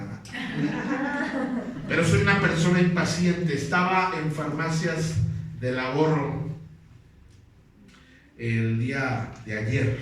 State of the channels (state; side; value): identical; both; correlation 1.00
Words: Pero soy una persona impaciente. Estaba en Farmacias del Ahorro el día de ayer